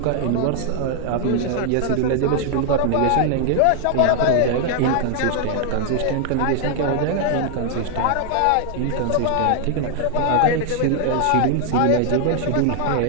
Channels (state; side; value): different; both; correlation 0.00